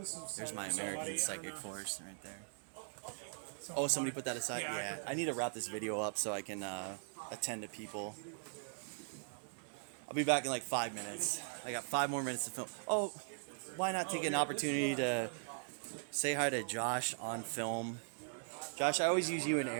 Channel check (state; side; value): silent; left; digital silence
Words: There's my American Psychic Force right there. Oh, somebody put that aside? Yeah. I need to wrap this video up so I can attend to people. I'll be back in like 5 minutes. I got 5 more minutes to film. Oh, why not take an opportunity to say hi to Josh on film? Josh, I always use you and